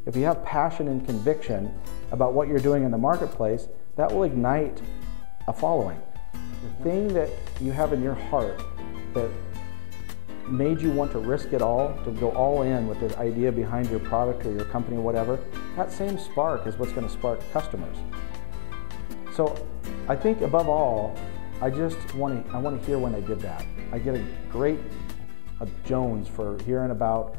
if you have passion and conviction about what you're doing in the marketplace, that will ignite a following. The thing that you have in your heart that made you want to risk it all, to go all in with the idea behind your product or your company or whatever, that same spark is what's going to spark customers. So I think above all, I want to hear when they did that. I get a great Jones for hearing about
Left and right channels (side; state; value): right; silent; 59 dB below the other